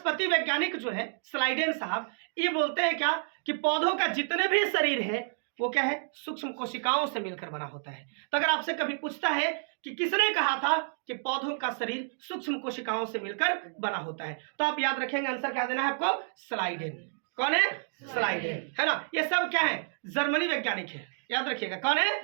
वैज्ञानिक जो है स्लाइडेन साहब, ये बोलते हैं क्या कि पौधों का जितने भी शरीर है वो क्या है, सूक्ष्म कोशिकाओं से मिलकर बना होता है। तो अगर आपसे कभी पूछता है कि किसने कहा था कि पौधों का शरीर सूक्ष्म कोशिकाओं से मिलकर बना होता है, तो आप याद रखेंगे, आंसर क्या देना है आपको, स्लाइडेन। कौन है, स्लाइडेन, है ना। ये सब क्या है, जर्मनी वैज्ञानिक है, याद रखिएगा, कौन है,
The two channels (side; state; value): left; silent; digital silence